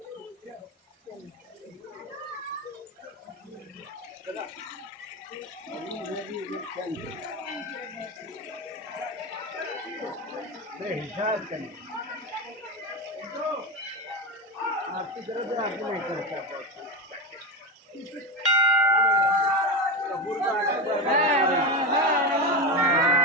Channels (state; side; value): normal; both; correlation 0.18